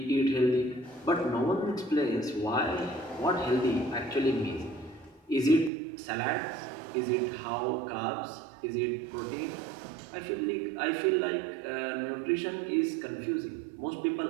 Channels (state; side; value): drops out; left; at 5.7 s